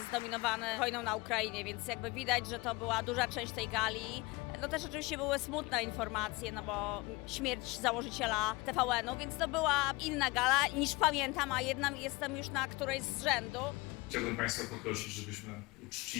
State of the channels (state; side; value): quieter; right; 23.7 dB